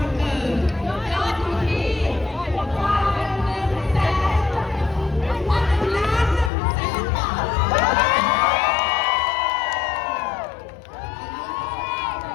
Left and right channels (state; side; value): drops out; right; at 6.5 s